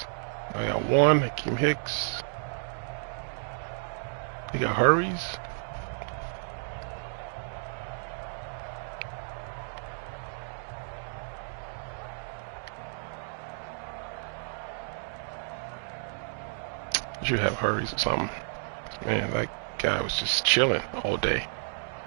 I got one. Akeem Hicks. He got hurries. You have hurries or something. Man, that guy was just chilling all day.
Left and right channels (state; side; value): silent; left; digital silence